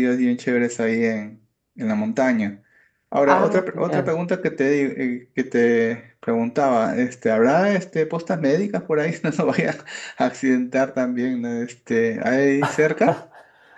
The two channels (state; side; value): identical; both; correlation 1.00